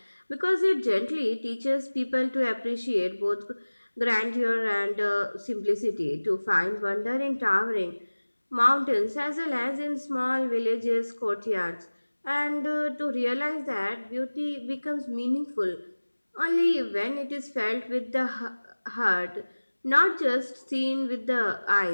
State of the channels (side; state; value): both; inverted; correlation -1.00